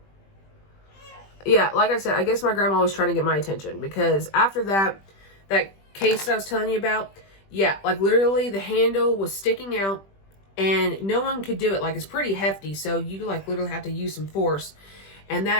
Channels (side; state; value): right; late; 20 ms